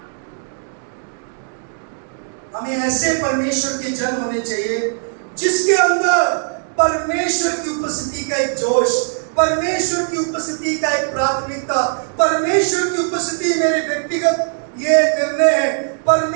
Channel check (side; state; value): left; silent; 67 dB below the other